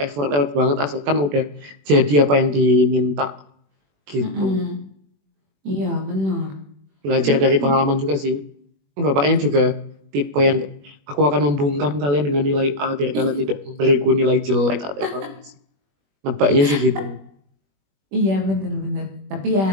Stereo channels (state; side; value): late; left; 21 ms